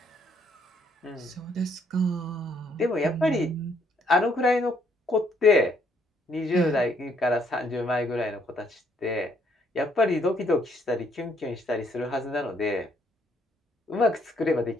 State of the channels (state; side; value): normal; both; correlation 0.69